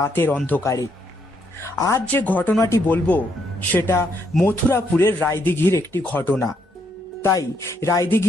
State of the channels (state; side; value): normal; both; correlation 0.74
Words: অন্ধকারে। আজ যে ঘটনাটি বলবো সেটা মথুরাপুরের রায়দিঘির একটি ঘটনা। তাই